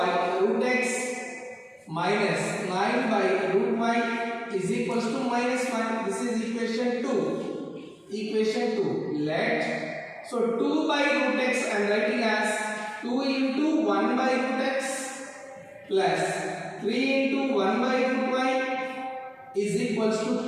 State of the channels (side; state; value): both; identical; correlation 1.00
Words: root x minus 9 by root y is equals to minus 1. This is equation 2. Equation 2. Let, so 2 by root x I am writing as 2 into 1 by root x plus 3 into 1 by root y is equals to